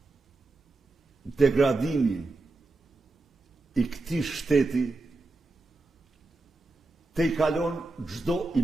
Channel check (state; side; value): quieter; left; 3.3 dB